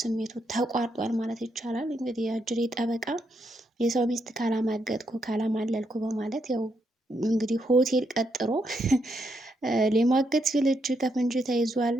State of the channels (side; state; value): both; normal; correlation 0.79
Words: ተቋርጧል ማለት ይቻላል። እንግዲህ የአጅሬ ጠበቃ የሰው ሚስት ካላማገጥኩ ካላማለልኩ በማለት ያው እንግዲህ ሆቴል ቀጥሮ ሊማገጥ ሲል እጅ ከፍንጅ ተይዟል።